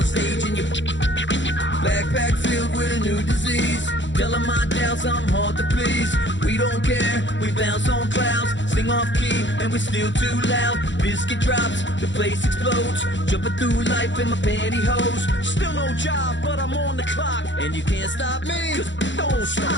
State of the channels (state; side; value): late; right; 0.54 ms